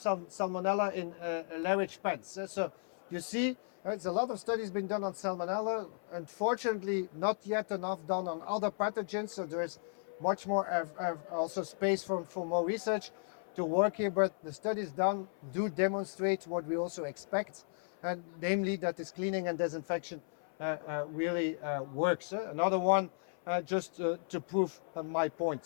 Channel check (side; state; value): right; silent; 54 dB below the other